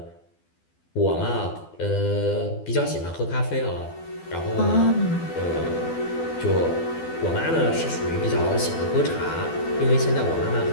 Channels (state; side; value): late; right; 12 ms